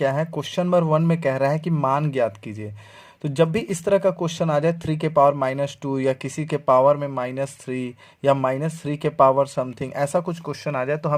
है, क्वेश्चन नंबर 1 में कह रहा है कि मान ज्ञात कीजिए। तो जब भी इस तरह का क्वेश्चन आ जाए 3 के पावर -2 या किसी के पावर में -3 या -3 के पावर समथिंग, ऐसा कुछ क्वेश्चन आ जाए तो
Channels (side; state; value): both; identical; correlation 1.00